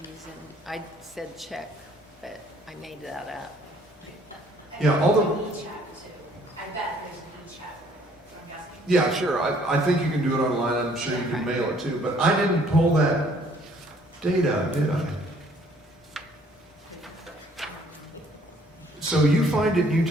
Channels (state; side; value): normal; both; correlation 0.61